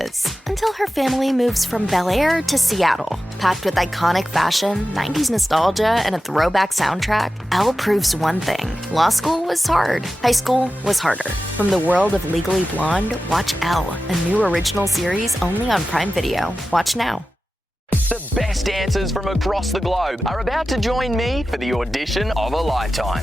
until her family moves from Bel Air to Seattle. Packed with iconic fashion, 90s nostalgia, and a throwback soundtrack, Elle proves one thing. Law school was hard. High school was harder. From the world of Legally Blonde, watch Elle, a new original series only on Prime Video. Watch now. The best dancers from across the globe are about to join me for the audition of a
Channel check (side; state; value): both; normal; correlation 0.93